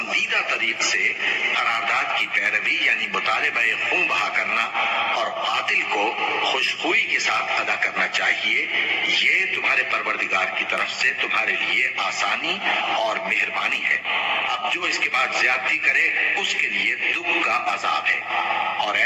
طریق سے قرارداد کی پیروی یعنی مطالبہ خون بہا کرنا اور قاتل کو خوشخوئی کے ساتھ ادا کرنا چاہیے۔ یہ تمہارے پروردگار کی طرف سے تمہارے لیے آسانی اور مہربانی ہے۔ اب جو اس کے بعد زیادتی کرے اس کے لیے دکھ کا عذاب ہے۔ اور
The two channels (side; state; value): both; identical; correlation 1.00